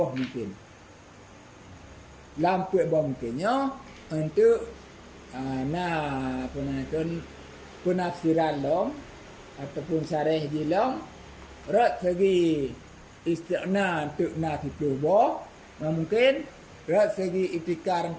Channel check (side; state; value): both; identical; correlation 1.00